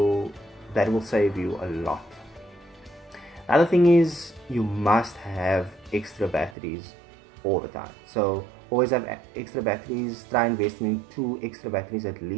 that will save you a lot. The other thing is, you must have extra batteries all the time. So always have extra batteries. Try investing in 2 extra batteries at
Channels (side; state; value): left; drops out; at 6.6 s